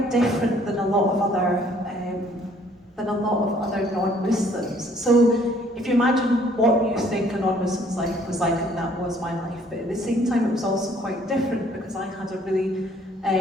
different than a lot of other non-Muslims. So if you imagine what you think a non-Muslim's life was like, and that was my life, but at the same time it was also quite different because I had a really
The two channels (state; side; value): normal; both; correlation 0.61